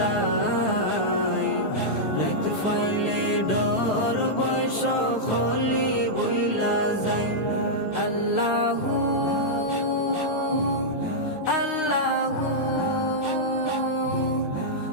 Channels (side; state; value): right; late; 9.1 ms